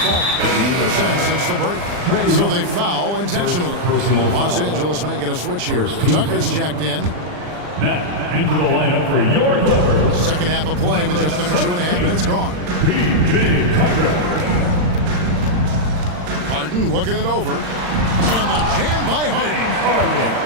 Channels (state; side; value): late; left; 40 ms